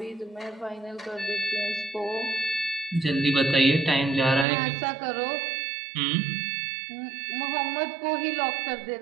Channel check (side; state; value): left; drops out; at 4.5 s